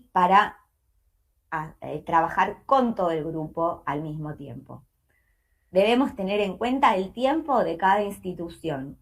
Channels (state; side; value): identical; both; correlation 1.00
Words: para trabajar con todo el grupo al mismo tiempo. Debemos tener en cuenta el tiempo de cada institución